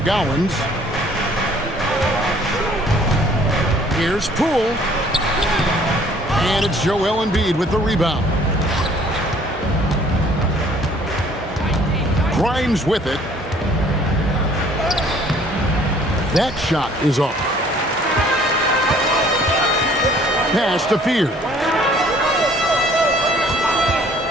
Here's Poole. And it's Joel Embiid with the rebound. Grimes with it. That shot is off. Pass to Fear.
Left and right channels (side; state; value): both; normal; correlation 0.57